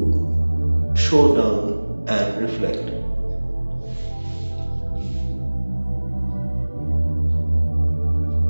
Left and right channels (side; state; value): both; inverted; correlation -1.00